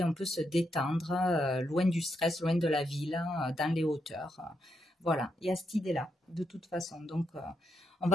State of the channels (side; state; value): both; normal; correlation 0.81